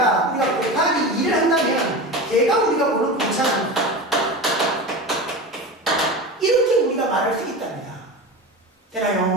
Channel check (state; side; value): normal; both; correlation 0.27